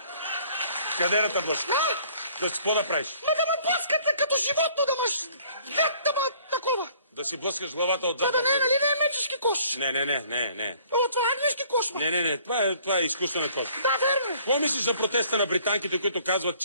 Къде да те блъска? Да си какво да правиш? Но да ме блъскате като животно, да маш... Да ме такова. Да си блъскаш главата отзад. Това да не е, нали не е мечешки кош? Не. О, това е английски кош, ма. Не. Това е изкуствен кош. Да, верно. Какво мислиш за протеста на британките, които казват,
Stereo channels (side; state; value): both; inverted; correlation -0.57